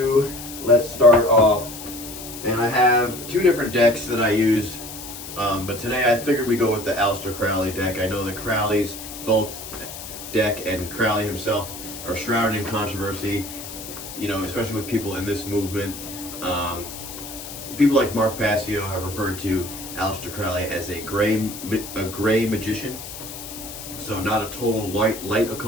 let's start off. And I have two different decks that I use, but today I figured we'd go with the Aleister Crowley deck. I know that Crowley's Thoth deck and Crowley himself are shrouded in controversy, especially with people in this movement. People like Mark Passio have referred to Aleister Crowley as a gray magician. So not a total light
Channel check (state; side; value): noise; left; hiss, 11 dB below the sound